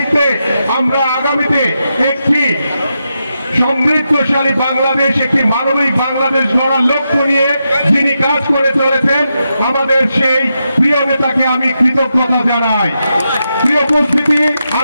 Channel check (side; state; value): both; inverted; correlation -0.86